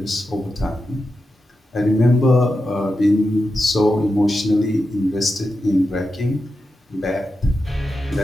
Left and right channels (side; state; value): both; normal; correlation 0.89